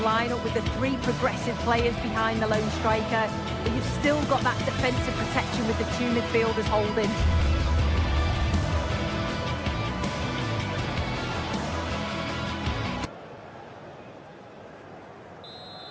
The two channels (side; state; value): both; identical; correlation 1.00